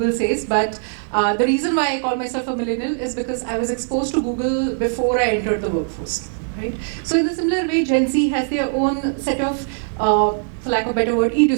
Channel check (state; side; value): silent; left; digital silence